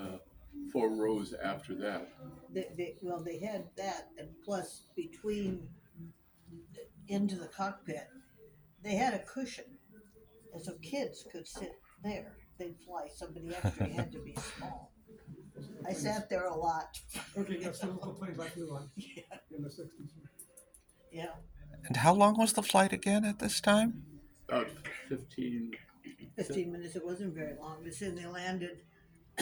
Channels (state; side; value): identical; both; correlation 1.00